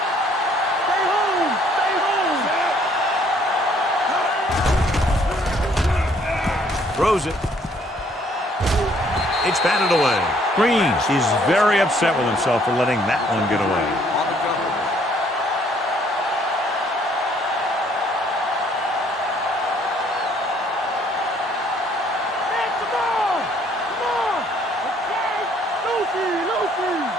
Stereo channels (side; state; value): both; normal; correlation 0.63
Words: Throws it. It's batted away. Green is very upset with himself for letting that one get away.